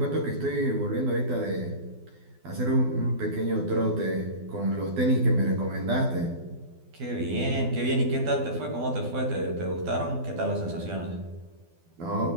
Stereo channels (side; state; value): left; late; 12 ms